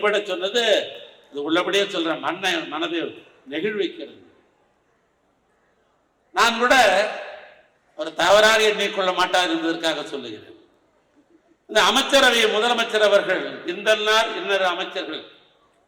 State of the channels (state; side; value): identical; both; correlation 1.00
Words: சொன்னது இது உள்ளபடியே சொல்றேன், மனதை நெகிழ்விக்கிறது. நான் கூட ஒரு தவறாக எண்ணிக்கொள்ள மாட்டார் என்பதற்காக சொல்லுகிறேன். இந்த அமைச்சரவை முதலமைச்சர் அவர்கள் இன்னொரு அமைச்சர்கள்